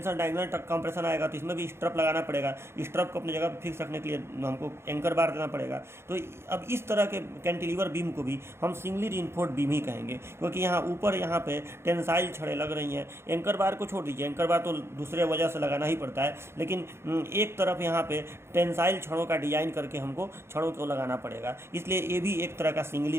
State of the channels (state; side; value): late; left; 0.12 ms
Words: डायगोनल कंप्रेशन आएगा, तो इसमें भी स्ट्रप लगाना पड़ेगा। स्ट्रप को अपनी जगह पर फिक्स रखने के लिए हमको एंकर बार देना पड़ेगा। तो अब इस तरह के कैंटिलीवर बीम को भी हम सिंगली रीइंफोर्स्ड बीम ही कहेंगे, क्योंकि यहाँ ऊपर यहाँ पे टेंसाइल छड़ें लग रही हैं। एंकर बार को छोड़ दीजिए, एंकर बार तो दूसरे वजह से लगाना ही पड़ता है, लेकिन एक तरफ यहाँ पे टेंसाइल छड़ों का डिज़ाइन करके हमको छड़ों को लगाना पड़ेगा। इसलिए ये भी एक तरह का सिंगली